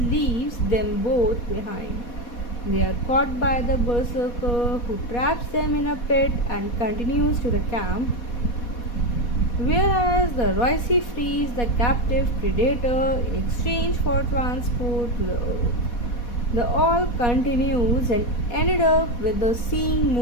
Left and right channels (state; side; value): late; right; 4.2 ms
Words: them both behind. They are caught by the Berserker, who traps them in a pit and continues to the camp, whereas the Royce frees the captive Predator in exchange for transport to the Earth. The all continues and ended up with the seeing